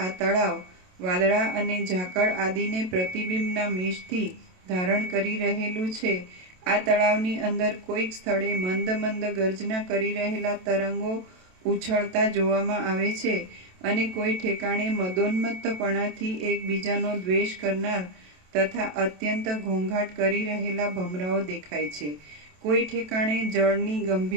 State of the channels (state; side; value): late; left; 27 ms